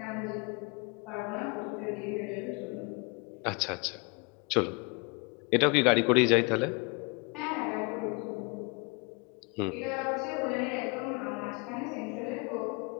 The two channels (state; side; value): quieter; right; 30.3 dB